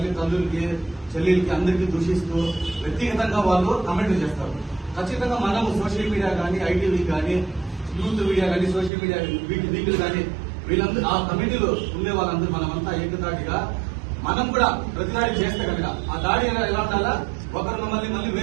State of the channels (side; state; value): left; drops out; at 8.9 s